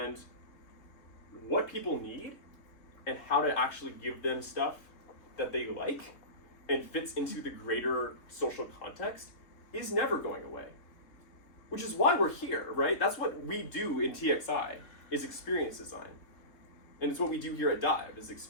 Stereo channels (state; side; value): late; right; 3.5 ms